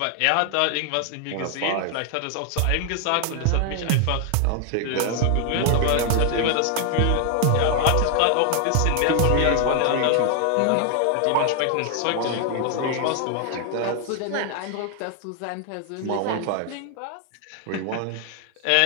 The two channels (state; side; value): different; both; correlation 0.00